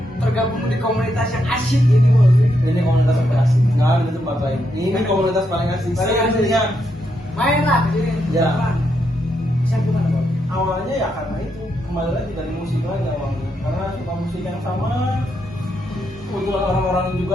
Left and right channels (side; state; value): both; normal; correlation 0.80